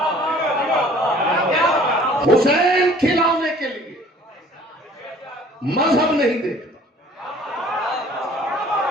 हुसैन खिलाने के लिए मजहब नहीं देखता।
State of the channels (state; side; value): normal; both; correlation 0.53